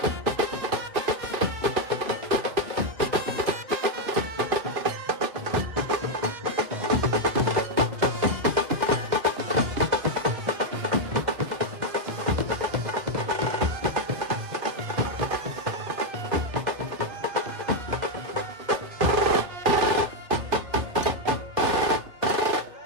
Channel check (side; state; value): left; late; 2.1 ms